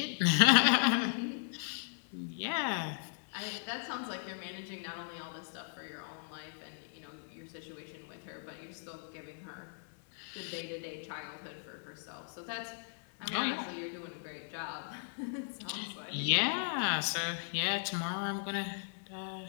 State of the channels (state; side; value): silent; right; digital silence